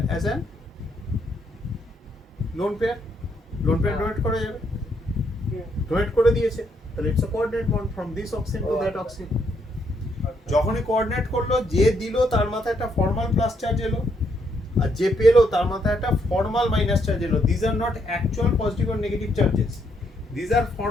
as an lone pair. Lone pair donate করা যাবে, donate করে দিয়েছে, তাহলে it's a coordinate bond from this oxygen to that oxygen. যখনই coordinate করলো, যে দিল তার মাথায় একটা ফর্মাল প্লাস চার্জ এলো, আর যে পেলো তার মাথায় একটা ফর্মাল মাইনাস চার্জ এলো। These are not actual positive or negative charges, these are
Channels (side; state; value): both; normal; correlation 0.74